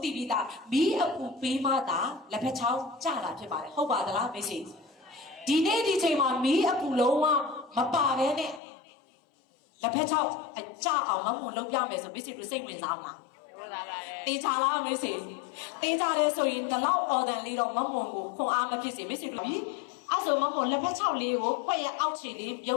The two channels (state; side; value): drops out; right; at 8.6 s